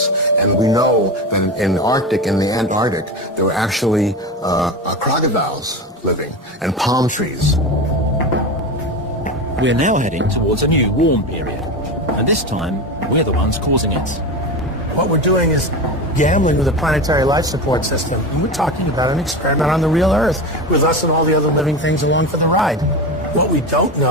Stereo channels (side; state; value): both; normal; correlation 0.23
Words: and we know that in the Arctic and the Antarctic, there were actually crocodiles living, and palm trees. We're now heading towards a new warm period, and this time we're the ones causing it. What we're doing is gambling with a planetary life support system. And we're talking about an experiment on the real Earth with us and all the other living things along for the ride. What we don't